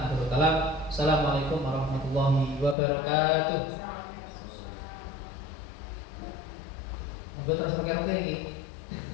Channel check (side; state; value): right; drops out; at 2.8 s